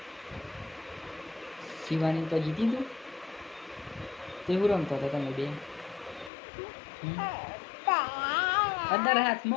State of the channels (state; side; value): drops out; right; at 6.3 s